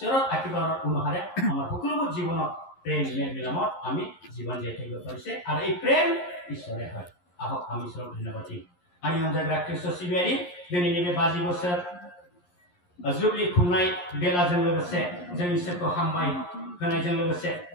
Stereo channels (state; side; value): late; right; 11 ms